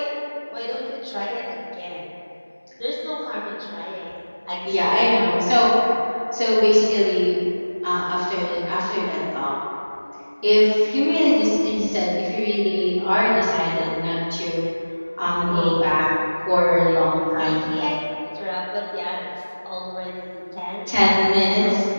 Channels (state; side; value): inverted; both; correlation -1.00